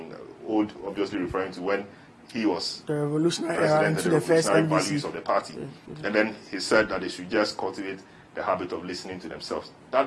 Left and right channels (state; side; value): identical; both; correlation 1.00